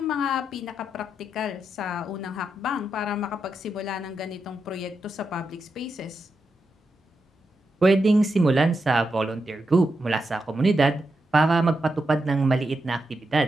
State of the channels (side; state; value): both; normal; correlation 0.86